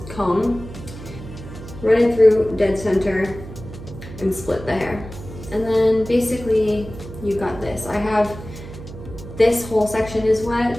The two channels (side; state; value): right; noise; hum, 13 dB below the sound